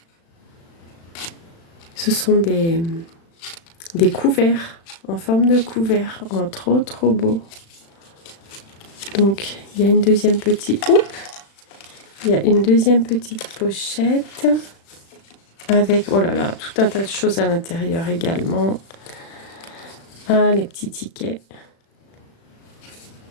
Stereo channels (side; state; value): right; late; 36 ms